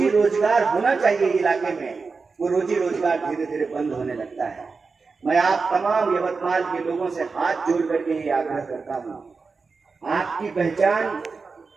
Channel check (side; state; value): left; quieter; 4.5 dB